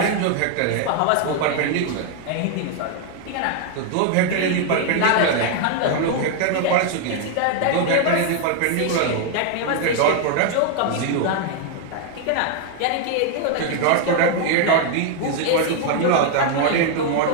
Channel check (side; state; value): both; different; correlation 0.00